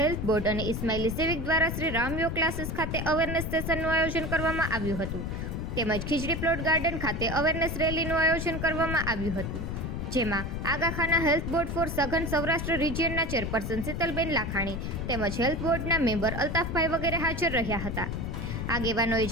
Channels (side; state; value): left; noise; rumble, 4 dB below the sound